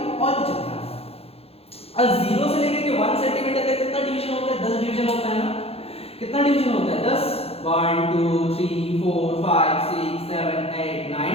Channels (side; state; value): right; late; 0.29 ms